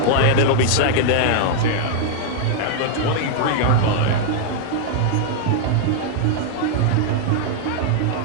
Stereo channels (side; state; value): both; different; correlation -0.01